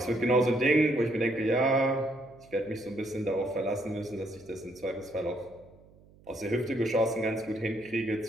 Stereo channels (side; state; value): right; noise; hum, 26 dB below the sound